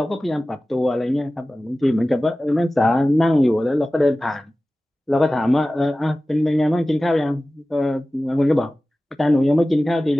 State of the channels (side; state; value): both; normal; correlation 0.96